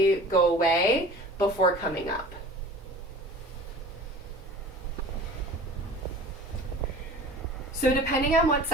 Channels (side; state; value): both; normal; correlation 0.42